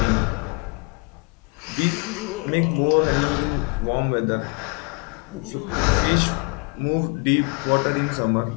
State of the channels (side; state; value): right; quieter; 32.5 dB